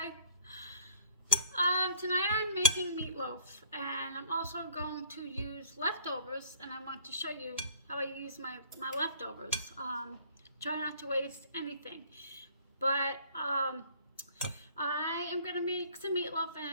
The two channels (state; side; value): inverted; both; correlation -0.51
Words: Tonight I'm making meatloaf, and I'm also going to use leftovers, and I want to show you how I use my leftovers. Try not to waste anything. But I am going to make some meatloaf,